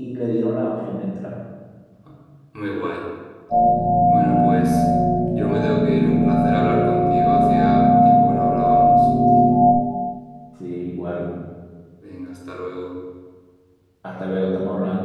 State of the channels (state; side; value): identical; both; correlation 1.00